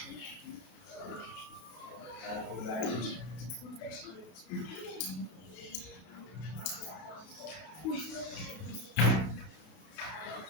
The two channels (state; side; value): late; right; 33 ms